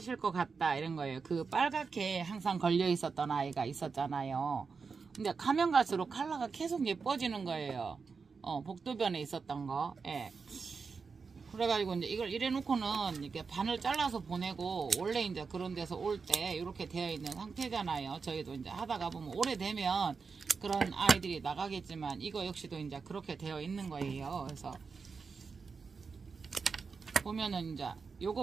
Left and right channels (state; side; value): quieter; left; 5.1 dB